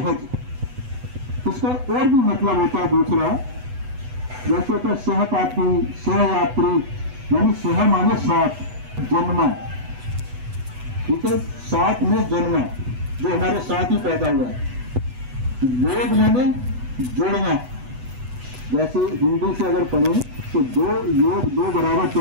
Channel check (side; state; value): left; late; 8.1 ms